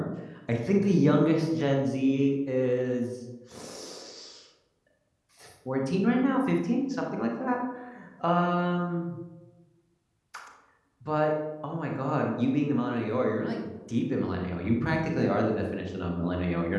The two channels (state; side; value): identical; both; correlation 1.00